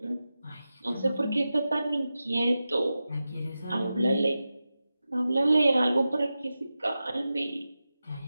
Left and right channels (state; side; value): inverted; both; correlation -0.93